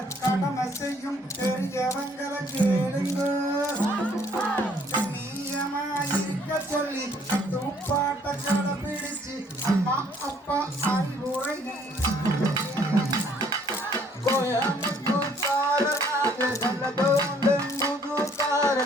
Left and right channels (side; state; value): both; normal; correlation 0.62